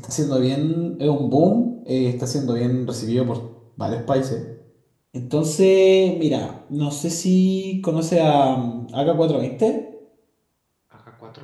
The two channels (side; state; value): both; identical; correlation 1.00